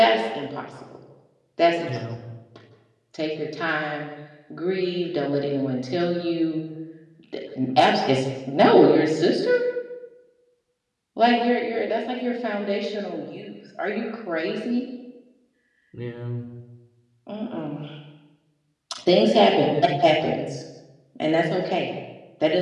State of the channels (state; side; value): identical; both; correlation 1.00